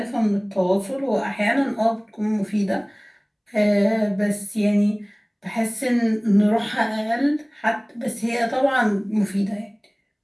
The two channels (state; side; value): identical; both; correlation 1.00